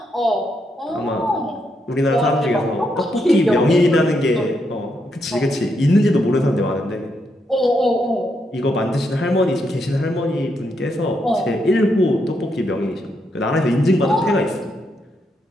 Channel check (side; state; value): both; normal; correlation 0.79